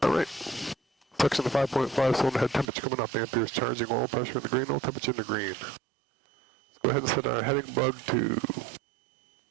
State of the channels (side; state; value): left; drops out; at 2.7 s